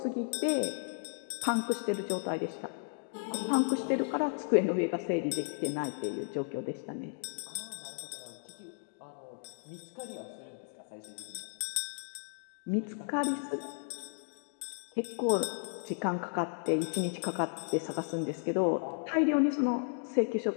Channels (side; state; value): right; silent; digital silence